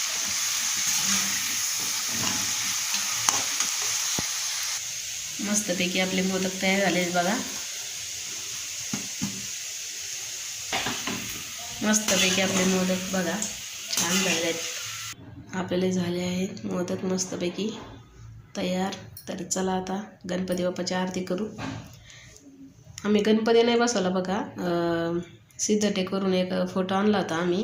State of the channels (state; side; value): identical; both; correlation 1.00